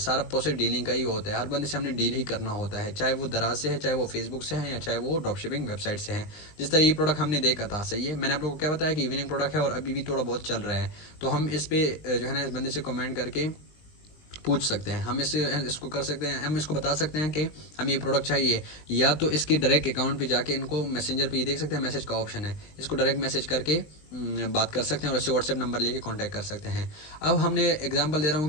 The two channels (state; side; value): late; right; 19 ms